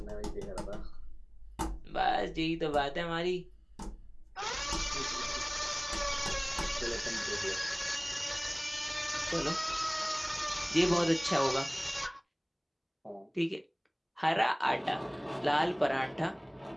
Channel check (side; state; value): both; identical; correlation 1.00